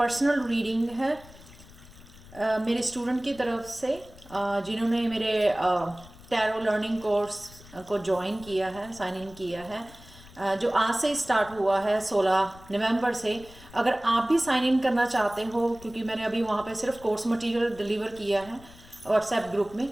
रीडिंग है मेरे स्टूडेंट की तरफ से, जिन्होंने मेरे टैरो लर्निंग कोर्स को ज्वाइन किया है, साइन इन किया है, जो आज से स्टार्ट हुआ है 16 नवंबर से। अगर आप भी साइन इन करना चाहते हो, क्योंकि मैंने अभी वहाँ पे सिर्फ कोर्स मटेरियल डिलीवर किया है व्हाट्सएप ग्रुप में,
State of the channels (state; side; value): noise; left; rumble, 21 dB below the sound